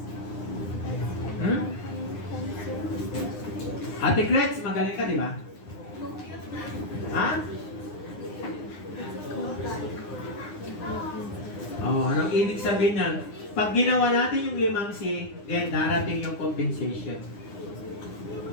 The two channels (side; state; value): right; late; 9.8 ms